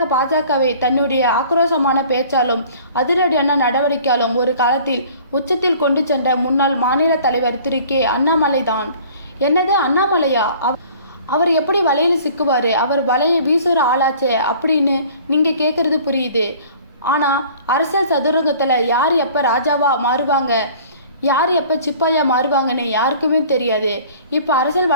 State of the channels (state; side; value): inverted; both; correlation -0.49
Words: பாஜகவை தன்னுடைய ஆக்ரோஷமான பேச்சாலும் அதிரடியான நடவடிக்கையாலும் ஒரு காலத்தில் உச்சத்தில் கொண்டு சென்ற முன்னாள் மாநில தலைவர் திரு கே. அண்ணாமலை தான். என்னது அண்ணாமலையா? அவர் எப்படி வலையில் சிக்குவார்? அவர் வலையை வீசுகிற ஆளாச்சே அப்படின்னு நீங்கள் கேட்குறது புரியுது. ஆனால் அரசியல் சதுரங்கத்தில் யார் எப்போ ராஜாவா மாறுவாங்க, யார் எப்போ சிப்பாயா மாறுவாங்கன்னு யாருக்குமே தெரியாது. இப்போ அரசியல்